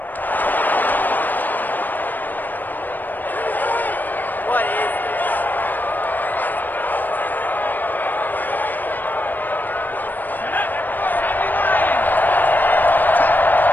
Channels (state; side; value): late; right; 0.089 ms